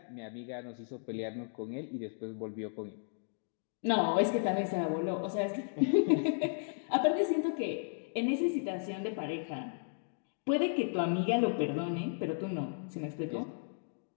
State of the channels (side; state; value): right; silent; digital silence